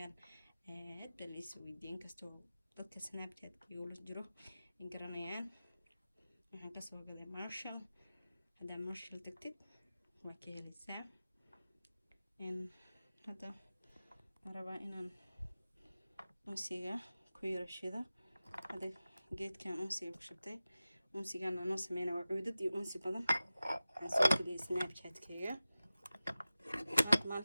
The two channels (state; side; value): inverted; both; correlation -0.96